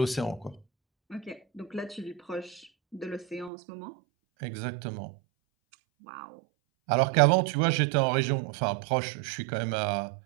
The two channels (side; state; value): left; drops out; at 3.5 s